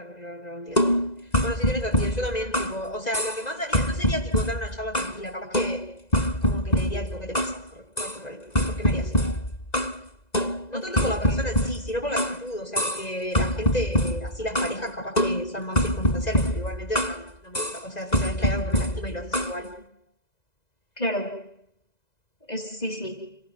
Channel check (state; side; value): late; right; 2.0 ms